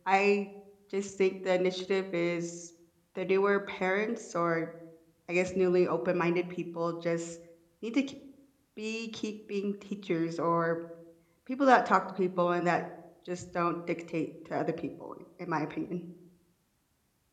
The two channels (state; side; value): identical; both; correlation 1.00